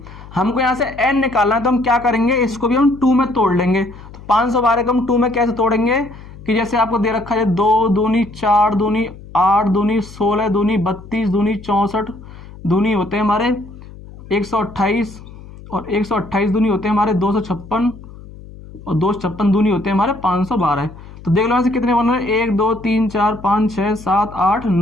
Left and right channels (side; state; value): left; noise; hum, 17 dB below the sound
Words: हमको यहाँ से n निकालना है, तो हम क्या करेंगे, इसको भी हम 2 में तोड़ लेंगे। तो 512 को हम 2 में कैसे तोड़ेंगे कि जैसे आपको दे रखा है 2 दूनी 4 दूनी 8 दूनी 16 दूनी 32 दूनी 64 दूनी होते हैं हमारे 128, और 128 दूनी होते हैं हमारे 256, और 256 दूनी होते हैं हमारे 512। तो देख लो यहाँ से कितने बन रहे हैं, 1 2 3 4 5 6 7 8